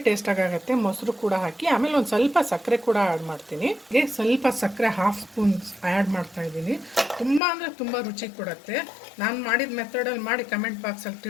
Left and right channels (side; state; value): right; drops out; at 7.4 s